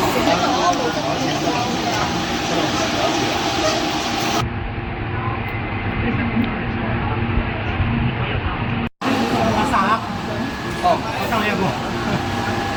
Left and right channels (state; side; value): identical; both; correlation 1.00